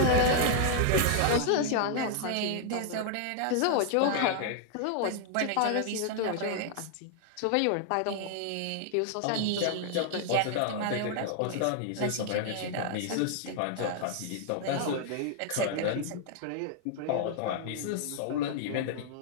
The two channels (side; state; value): both; different; correlation -0.01